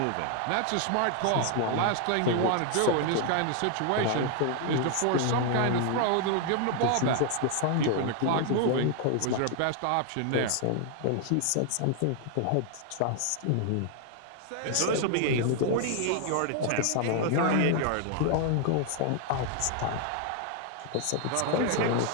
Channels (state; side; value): different; both; correlation 0.00